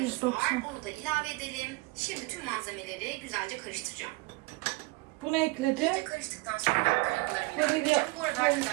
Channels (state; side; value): quieter; left; 23.6 dB